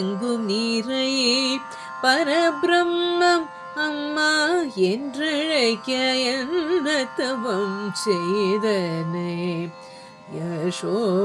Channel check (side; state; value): both; identical; correlation 1.00